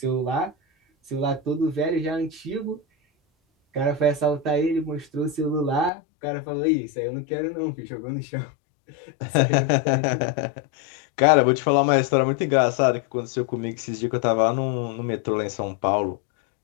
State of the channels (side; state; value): right; drops out; at 5.9 s